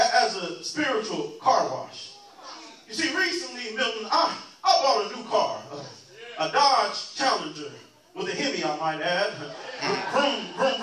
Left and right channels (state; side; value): identical; both; correlation 1.00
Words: a spiritual car wash. You see, recently, Milton, I bought a new car, a Dodge Challenger with a Hemi, I might add. Vroom, vroom,